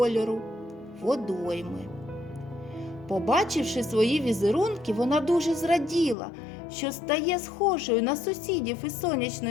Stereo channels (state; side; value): drops out; right; at 6.2 s